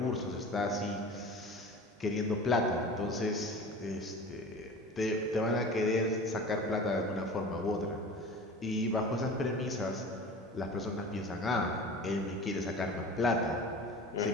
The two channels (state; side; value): normal; both; correlation 0.37